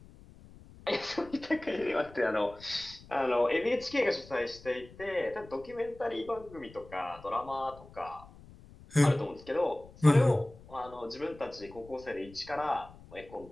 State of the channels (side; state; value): left; noise; rumble, 21 dB below the sound